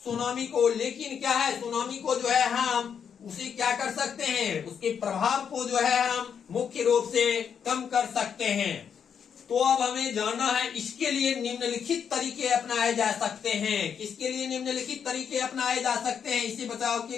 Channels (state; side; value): quieter; right; 7.4 dB